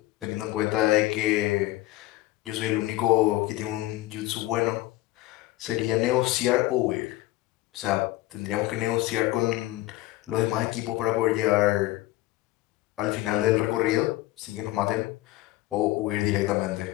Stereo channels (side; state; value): right; quieter; 17.3 dB